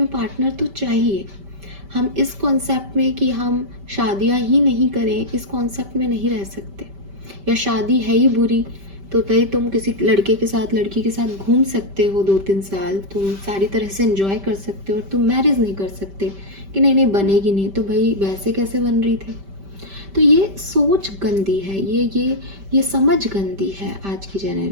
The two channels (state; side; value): late; left; 5.1 ms